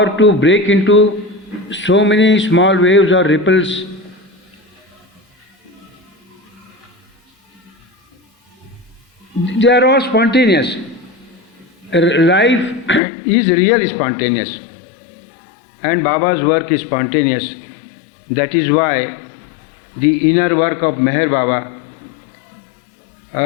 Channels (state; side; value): drops out; right; at 13.0 s